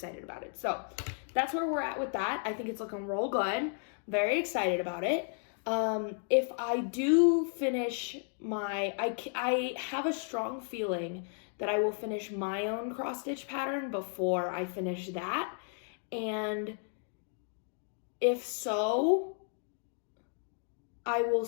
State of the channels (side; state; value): right; silent; 55 dB below the other